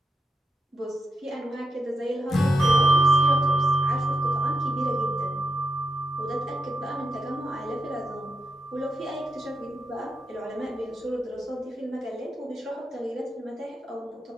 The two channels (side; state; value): both; normal; correlation 0.84